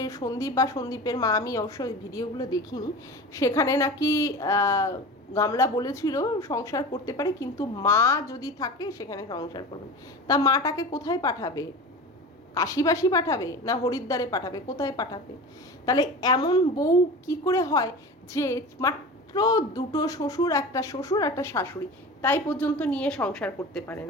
সন্দীপ বা সন্দীপের মা, আমি অবশ্য ওই ভিডিওগুলো দেখিনি, সেখানে নাকি গামলা বলেছিল সংসার করতে পারে, কিন্তু মা যদি থাকে সেখানে সংসার করবেন। তা মাটাকে কোথায় পাঠাবে? কাশিবাসী পাঠাবে না হরিদ্বারে পাঠাবে? কোথায় পাঠাবে? তাহলে এমন বউ কি করে হয় যে মাত্র দুটো শ্বশুর, একটা শ্বশুর একটা শাশুড়ি, তাই পর্যন্ত নিয়ে সংসার করতে পারে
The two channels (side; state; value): both; normal; correlation 0.32